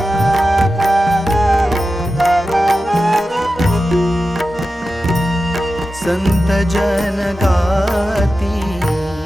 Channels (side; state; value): both; normal; correlation 0.92